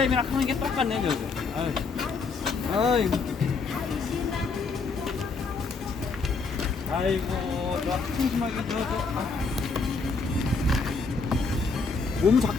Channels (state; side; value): quieter; right; 4.4 dB